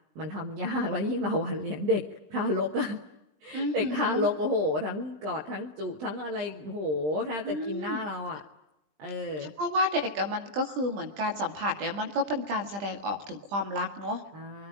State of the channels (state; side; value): late; left; 20 ms